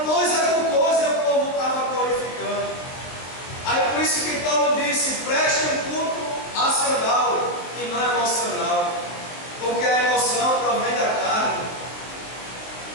coisa por coisa e o povo estava glorificando. Aí por isso que Paulo disse: preste um culto racional e não emocional, porque a emoção provém da carne.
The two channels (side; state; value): right; late; 23 ms